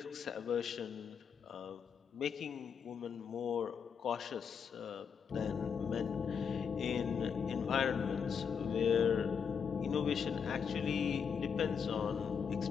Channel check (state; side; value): quieter; right; 6.7 dB